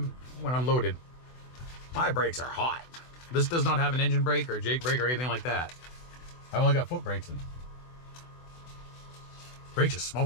when I'm loaded. My brakes are hot. This does not have an engine brake or Jake brake or anything like that. I've only got foot brakes in. Brakes are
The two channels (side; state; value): right; late; 24 ms